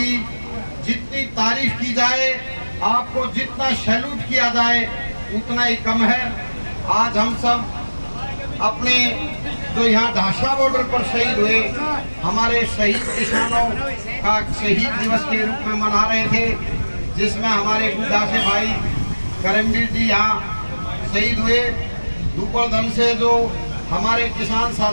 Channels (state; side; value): inverted; both; correlation -1.00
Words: जितनी तारीफ की जाए, आपको जितना सैल्यूट किया जाए उतना ही कम है। आज हम सब अपने जो यहाँ ढाशा बॉर्डर पर शहीद हुए हमारे शहीद किसानों का शहीद दिवस के रूप में मना रहे थे, जिसमें हमारे गुरदासे भाई करमवीर जी यहाँ शहीद हुए। दुपड़दम से जो हमारे किसान